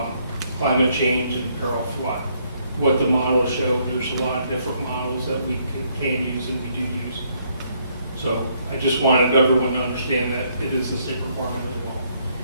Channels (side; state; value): both; inverted; correlation -0.70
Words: climate change and peril of flood. What the models show, there's a lot of different models that we can use and we do use. So I just wanted everyone to understand that it is the state requirement as well.